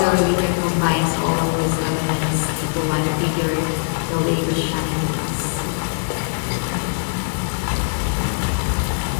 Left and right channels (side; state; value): right; silent; digital silence